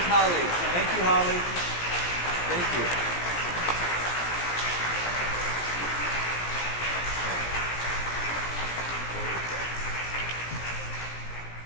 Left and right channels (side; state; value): right; late; 17 ms